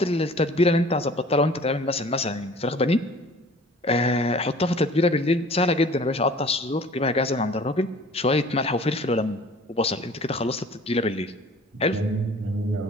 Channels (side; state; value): both; normal; correlation 0.47